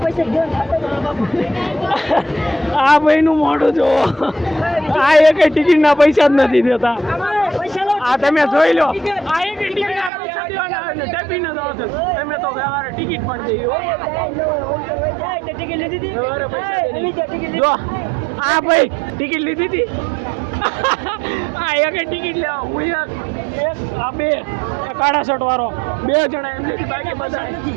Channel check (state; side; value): drops out; left; at 10.1 s